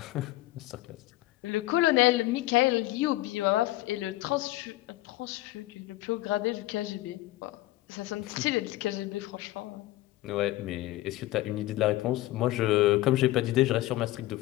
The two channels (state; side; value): quieter; right; 17.2 dB